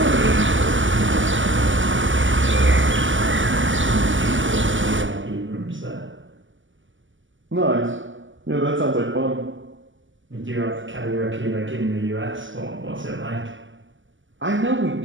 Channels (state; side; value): late; left; 0.55 ms